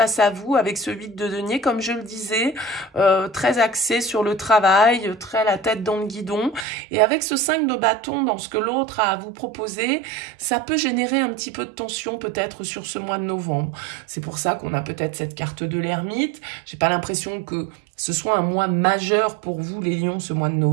à vous avec ce 8 de denier, comme je le disais, très axé sur le travail, très la tête dans le guidon. Et avec ce 5 de bâton dans ce que l'autre a à vous proposer, ça peut générer un petit peu de tension peut-être sur ce mois de novembre. C'est pour ça qu'on a peut-être cette carte de l'ermite. J'ai pas l'impression que ce soit un mois majeur pour vous les lions ce mois de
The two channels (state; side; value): drops out; left; at 6.7 s